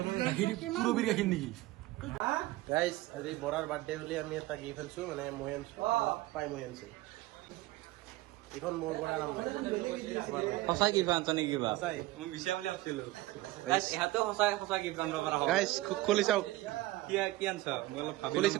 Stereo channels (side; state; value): left; quieter; 18.1 dB